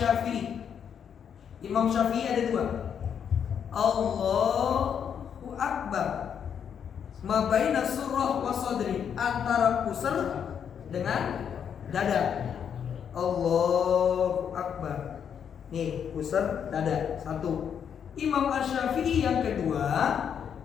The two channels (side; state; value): right; quieter; 7.9 dB